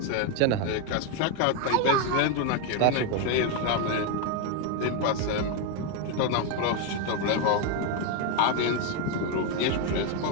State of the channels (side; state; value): both; different; correlation 0.02